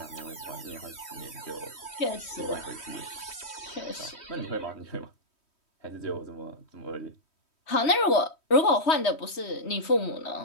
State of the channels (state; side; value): late; right; 3.1 ms